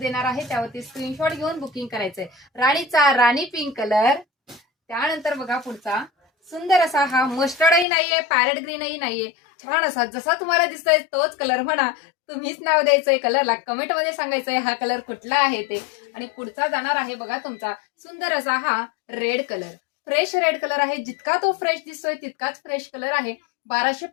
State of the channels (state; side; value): drops out; right; at 7.9 s